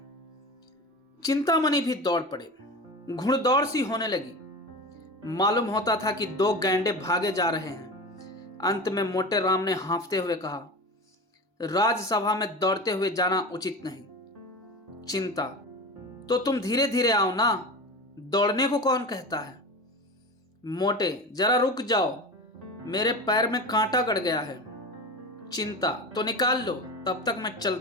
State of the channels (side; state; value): both; normal; correlation 0.29